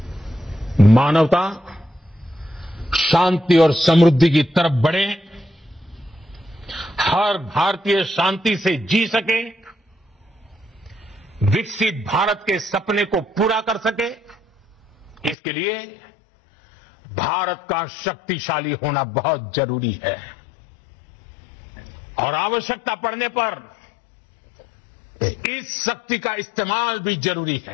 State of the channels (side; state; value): right; drops out; at 15.4 s